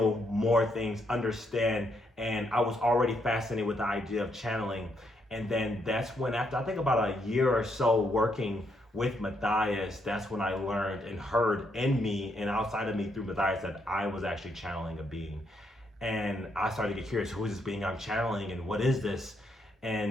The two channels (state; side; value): normal; both; correlation 0.76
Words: more things, understand, and I was already fascinated with the idea of channeling. And then that's when, after I think about a year or so working with Matthias, that's when I learned and heard in me and outside of me through Matthias that I was actually channeling a being. And I started to get curious, who is this being I'm channeling and what is this?